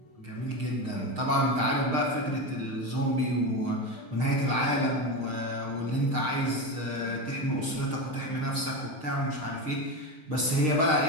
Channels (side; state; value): left; late; 6.5 ms